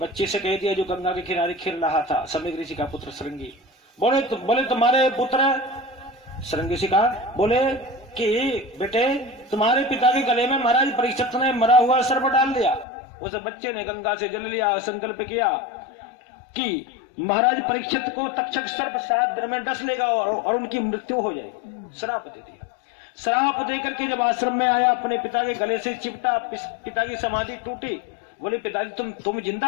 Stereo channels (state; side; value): drops out; right; at 12.9 s